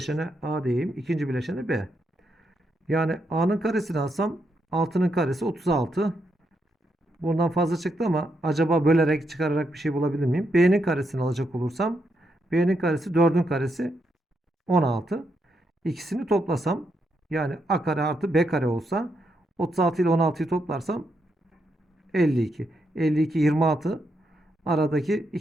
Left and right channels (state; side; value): normal; both; correlation 0.80